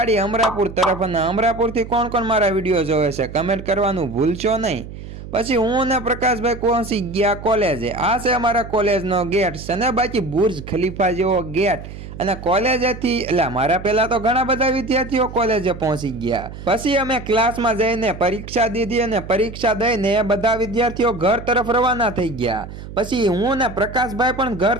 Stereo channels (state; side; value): noise; right; hum, 12 dB below the sound